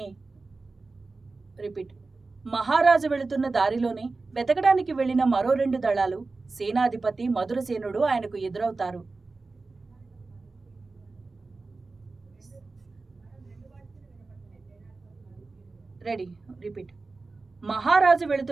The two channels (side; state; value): left; quieter; 3.7 dB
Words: దారిలోనే వెతకడానికి వెళ్లిన మరో 2 దళాలు సేనాధిపతి మధురసేనుడు ఆయనకు ఎదురవుతారు. మహారాజు